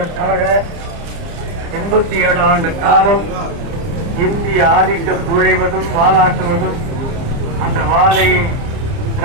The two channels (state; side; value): late; left; 30 ms